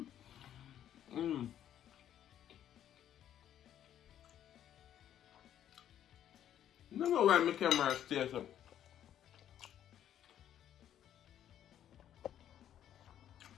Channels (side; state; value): right; quieter; 10.7 dB